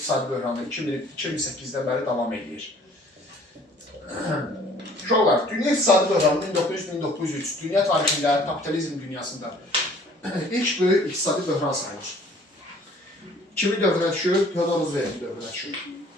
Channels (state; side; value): normal; both; correlation 0.55